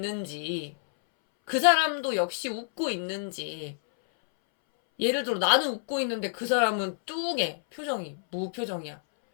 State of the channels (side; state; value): right; silent; 59 dB below the other